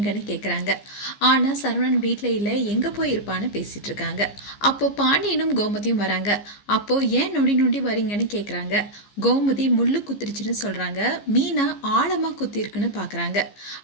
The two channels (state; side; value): late; right; 15 ms